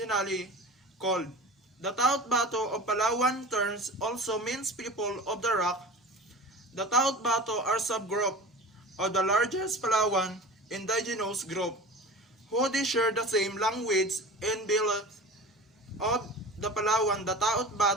called. The Taot Bato of Palawan terms also means people of the rock. The Taot Bato are subgroup of the largest Palawan Indigenous group, who they share the same language and beliefs of the Palawan. The Taot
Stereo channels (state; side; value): normal; both; correlation 0.36